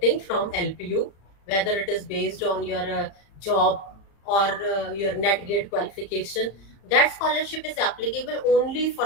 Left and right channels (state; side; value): late; right; 35 ms